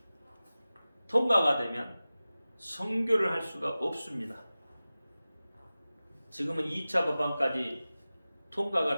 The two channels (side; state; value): both; inverted; correlation -0.96